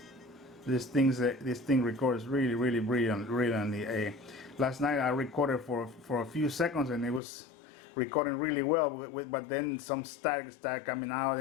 This thing records really brilliantly. Last night I recorded for a few seconds and it was recording really well, but then some static started coming out,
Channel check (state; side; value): drops out; right; at 7.2 s